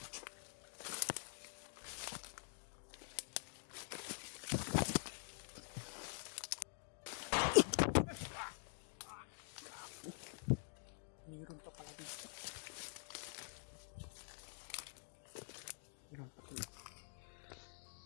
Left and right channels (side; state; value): right; silent; digital silence